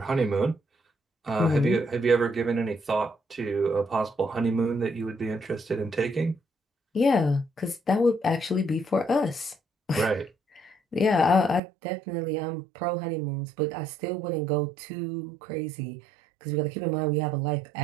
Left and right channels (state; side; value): drops out; left; at 11.6 s